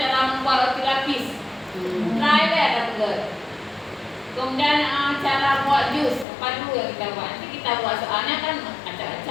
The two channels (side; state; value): right; drops out; at 6.2 s